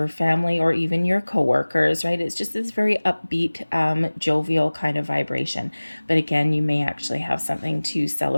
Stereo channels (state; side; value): inverted; both; correlation -1.00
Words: family, or even your coworkers, right? It's just this very upbeat, jovial kind of vibration. But again, you may actually have something to